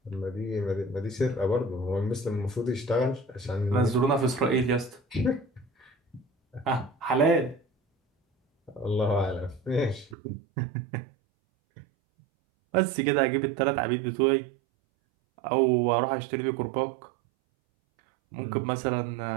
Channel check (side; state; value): left; drops out; at 10.2 s